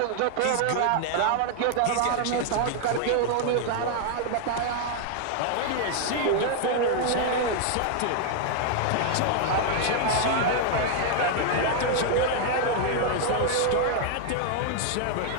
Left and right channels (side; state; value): both; different; correlation 0.00